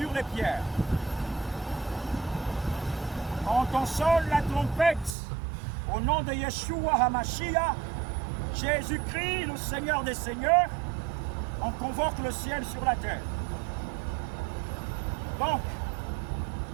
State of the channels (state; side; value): drops out; left; at 5.2 s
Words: les pierres. Quand on sonne la trompette au nom de Yeshua HaMashiach, Jésus-Christ, le Seigneur des Seigneurs, on convoque le ciel sur la terre. Donc,